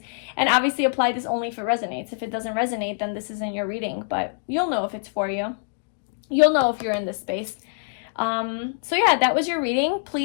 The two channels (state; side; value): silent; right; digital silence